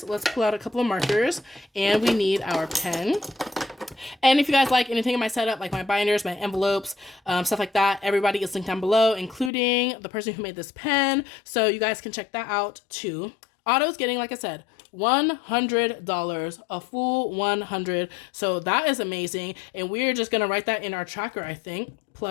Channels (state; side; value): drops out; right; at 9.5 s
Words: Let's pull out a couple of markers, and we need our pen. And if you guys like anything in my setup, like my binders, my envelopes, stuff like that, everybody is linked down below, including the person who made this pen. So you guys can check that out too. Otto's getting, like I said, $100, a full 100. So that is amazing. And we're just going to write that in our tracker, I think,